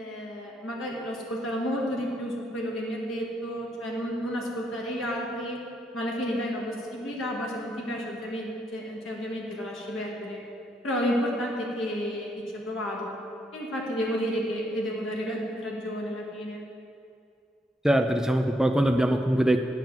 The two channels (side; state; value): both; normal; correlation 0.76